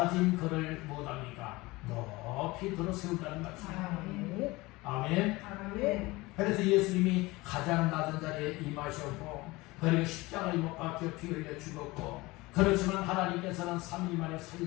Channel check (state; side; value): quieter; right; 21.6 dB